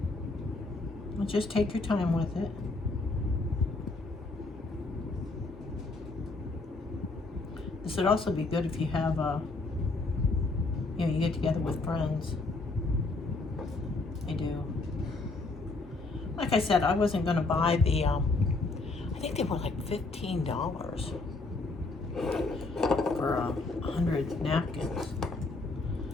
Well, just take your time with it. This would also be good if you have you get together with friends. I do. Like I said, I wasn't going to buy the, I think they were like $15 for 100 napkins.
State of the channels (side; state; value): right; quieter; 3.4 dB